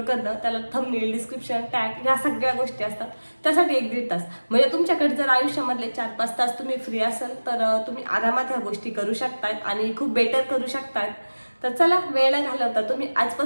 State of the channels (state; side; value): inverted; both; correlation -1.00